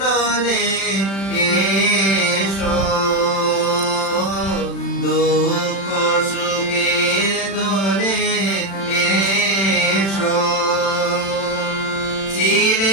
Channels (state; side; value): late; right; 36 ms